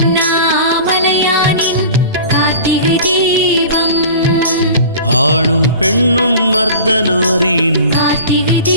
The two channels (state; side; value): inverted; both; correlation -0.39